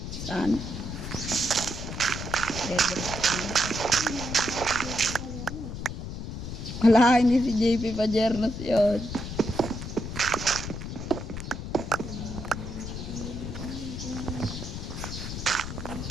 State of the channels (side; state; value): left; noise; rumble, 7 dB below the sound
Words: Saan? Wala, hindi si JP Pajernos yun.